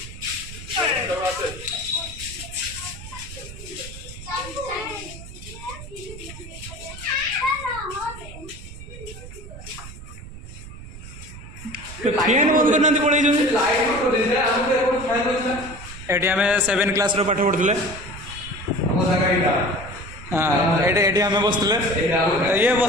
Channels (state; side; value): noise; right; rumble, 14 dB below the sound